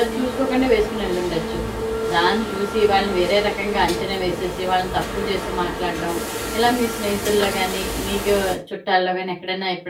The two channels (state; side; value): identical; both; correlation 1.00